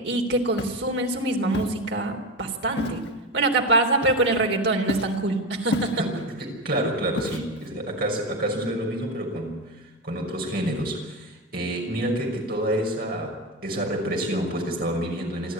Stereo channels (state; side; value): normal; both; correlation 0.19